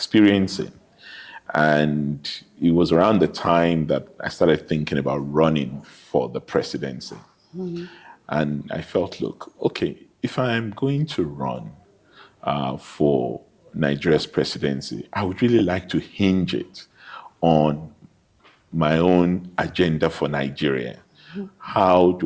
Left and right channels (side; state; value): both; identical; correlation 1.00